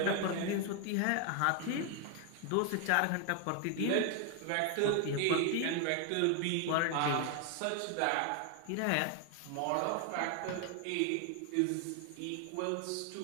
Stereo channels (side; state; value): both; different; correlation 0.00